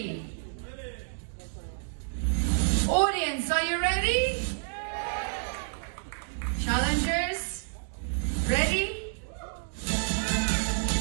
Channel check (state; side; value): silent; left; digital silence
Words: Audience, are you ready? Challengers, ready?